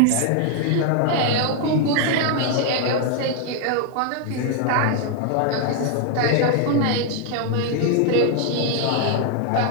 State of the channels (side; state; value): both; different; correlation 0.00